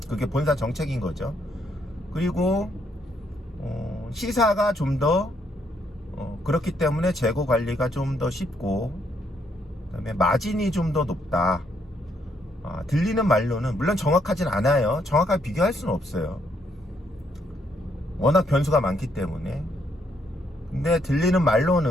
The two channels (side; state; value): both; normal; correlation 0.73